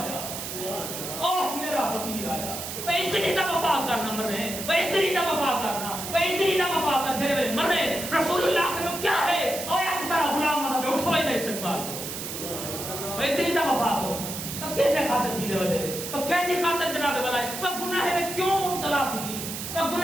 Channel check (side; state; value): right; noise; hiss, 7 dB below the sound